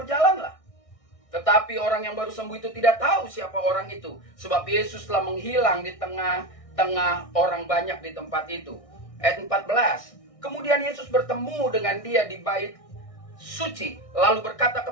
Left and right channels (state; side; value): late; right; 1.6 ms